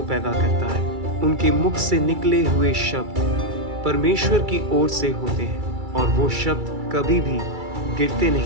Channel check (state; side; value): late; left; 2.3 ms